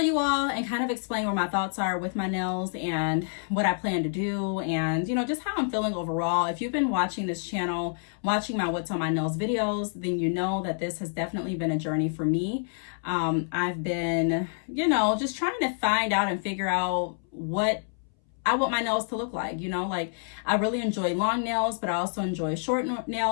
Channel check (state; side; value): silent; right; 60 dB below the other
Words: you all and kind of explain what my thoughts are with my nails and what I plan to do and, just how I'm feeling overall. If you've been watching this channel, watching my What's on My Nails videos, then you know that this has definitely been a journey for me. I've been, just trying to find out and figure out what I want my nails to look like. I really enjoy long nails, but I also enjoy short